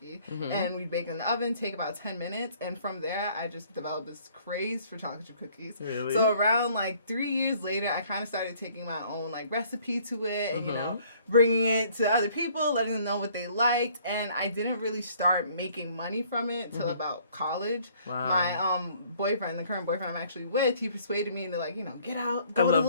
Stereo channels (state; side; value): inverted; both; correlation -0.59